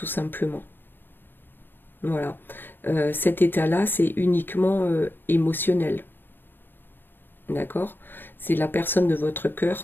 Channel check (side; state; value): right; late; 0.095 ms